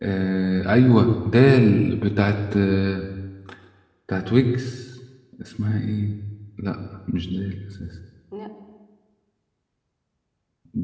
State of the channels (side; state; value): both; identical; correlation 1.00